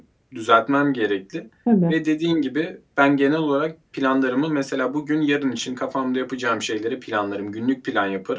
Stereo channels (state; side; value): identical; both; correlation 1.00